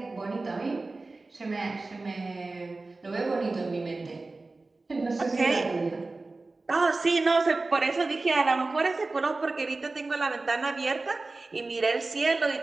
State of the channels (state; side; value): quieter; left; 3.4 dB